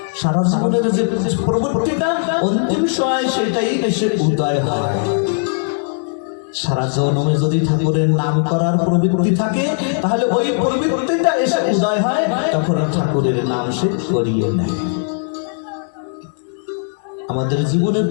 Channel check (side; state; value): right; silent; digital silence